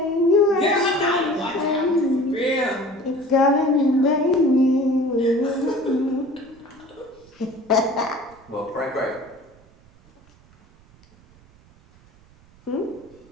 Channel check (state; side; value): noise; right; rumble, 28 dB below the sound